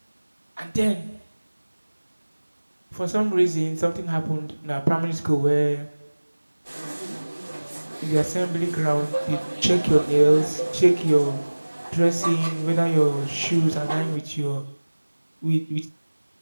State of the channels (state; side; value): inverted; both; correlation -1.00